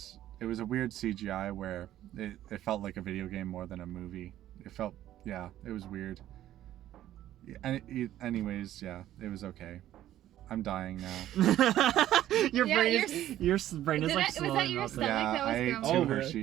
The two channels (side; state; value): left; quieter; 12.9 dB